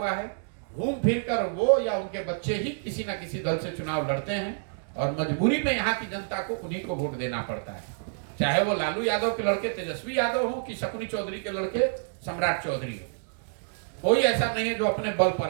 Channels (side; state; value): left; silent; digital silence